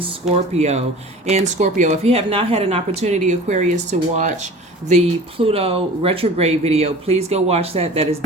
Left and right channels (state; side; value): normal; both; correlation 0.41